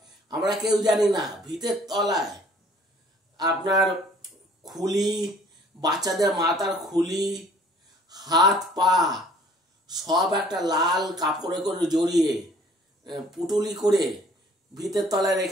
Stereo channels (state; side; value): normal; both; correlation 0.55